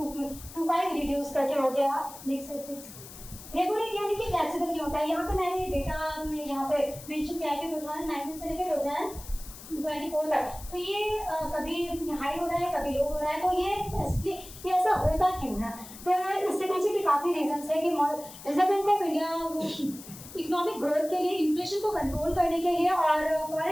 रिड्यूस करके हो गया। नेक्स्ट है प्लीज। रेपो रेट यानी कि फ्लेक्सिबल क्यों होता है? यहाँ पे मैंने डेटा में यहाँ पे मेंशन किया है कि 2019 से लेकर 2024 तक तो ये कभी हाई हो रहा है कभी लो हो रहा है। तो ये ऐसा होता क्यों है? तो इसके पीछे भी काफ़ी रीजंस है कि reserve bank of India economic growth के लिए, इन्फ्लेशन को कंट्रोल करने के लिए और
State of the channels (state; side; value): noise; left; hiss, 16 dB below the sound